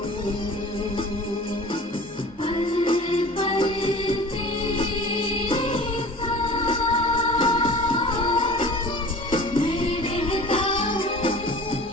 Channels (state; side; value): normal; both; correlation 0.41